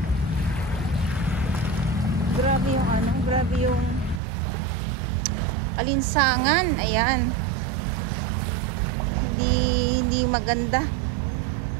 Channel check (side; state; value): left; drops out; at 4.2 s